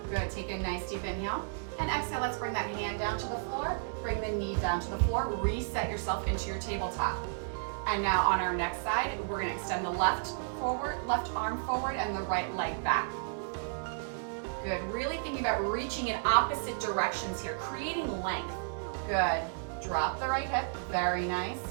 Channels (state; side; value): silent; left; digital silence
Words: Good, take a nice deep inhale and exhale. Let's bring that hand down to the floor, bring the knee down to the floor, reset yourself into your tabletop. And now on our next side, we're gonna extend the left arm forward and the right leg back. Good, really thinking about reaching in opposite directions here, creating length. Good, drop the right hip, very nice.